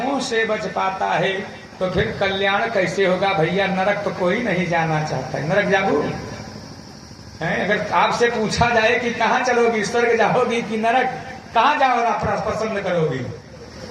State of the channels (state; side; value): identical; both; correlation 1.00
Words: से बच पाता है। तो फिर कल्याण कैसे होगा भैया? नरक तो कोई नहीं जाना चाहता है। नरक जाओ है? अगर आपसे पूछा जाए कि कहाँ चलोगी, स्वर्ग जाओगी कि नरक, कहाँ जाओ पसंद करोगी?